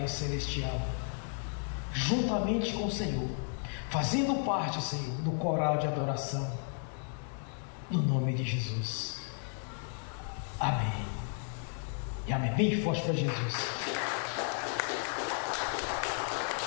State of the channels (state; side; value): silent; right; 55 dB below the other